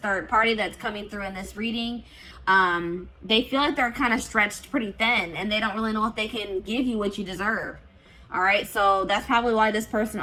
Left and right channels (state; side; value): identical; both; correlation 1.00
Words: party that's coming through in this reading. They feel like they're kind of stretched pretty thin, and they don't really know if they can give you what you deserve. All right, so that's probably why this person